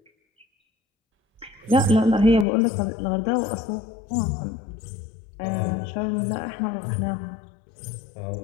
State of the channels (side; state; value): right; drops out; at 2.5 s